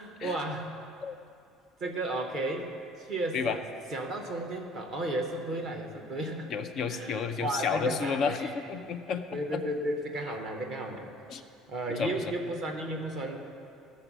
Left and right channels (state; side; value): normal; both; correlation 0.53